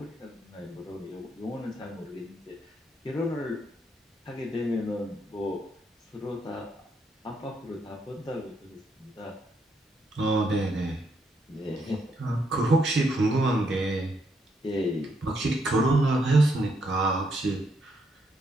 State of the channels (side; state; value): both; normal; correlation 0.76